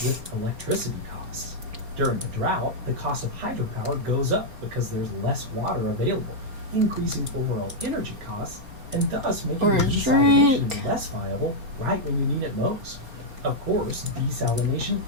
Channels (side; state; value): left; late; 4.3 ms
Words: with electricity costs. During a drought, the cost of hydropower goes up because there's less water available, increasing overall energy costs and thus making desalination less viable right when you need it most. Of course, desalination